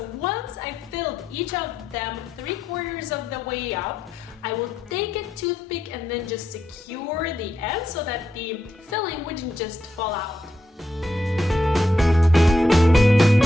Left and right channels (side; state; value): both; normal; correlation 0.82